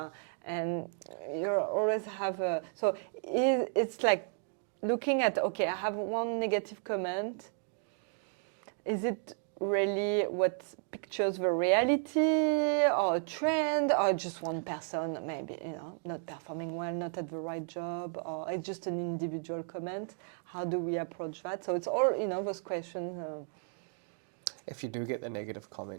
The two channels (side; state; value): left; silent; 55 dB below the other